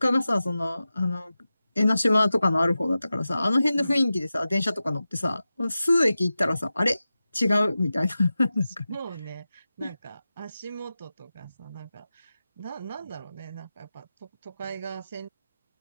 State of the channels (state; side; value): inverted; both; correlation -0.93